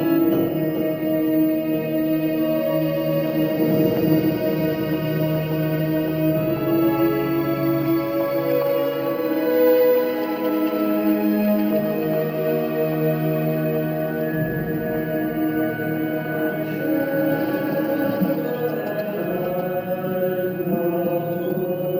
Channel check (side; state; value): both; identical; correlation 1.00